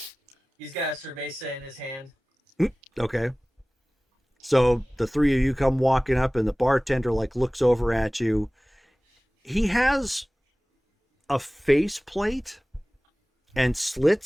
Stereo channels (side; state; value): both; normal; correlation 0.98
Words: He's got a cerveza in his hand. Okay. So the three of you come walking up, and the bartender like looks over at you. He has a face plate and